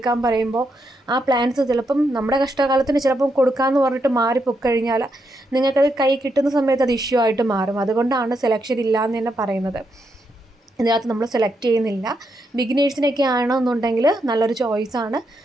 പറയുമ്പോൾ ആ പ്ലാന്റ്സ് ചിലപ്പം നമ്മുടെ കഷ്ടകാലത്തിന് ചിലപ്പം കൊടുക്കാമെന്ന് പറഞ്ഞിട്ട് മാറിപ്പോയിക്കഴിഞ്ഞാൽ നിങ്ങൾക്കത് കൈ കിട്ടുന്ന സമയത്ത് അത് ഇഷ്യൂ ആയിട്ട് മാറും. അതുകൊണ്ടാണ് സെലക്ഷൻ ഇല്ലയെന്ന് തന്നെ പറയുന്നത്. ഇതിനകത്ത് നമ്മൾ സെലക്ട് ചെയ്യുന്നില്ല. ബിഗിനേഴ്സിനൊക്കെ ആണെന്നുണ്ടെങ്കിൽ നല്ലൊരു ചോയ്സാണ്.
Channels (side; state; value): both; normal; correlation 0.81